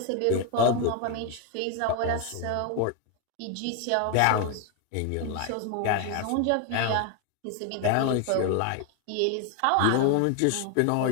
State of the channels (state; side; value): different; both; correlation 0.01